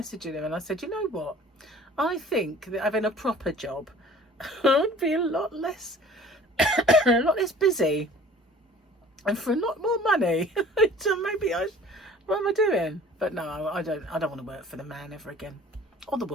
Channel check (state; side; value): normal; both; correlation 0.48